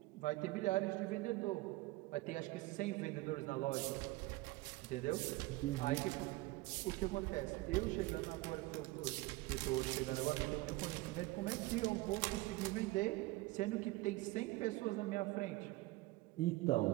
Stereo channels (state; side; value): quieter; left; 20.2 dB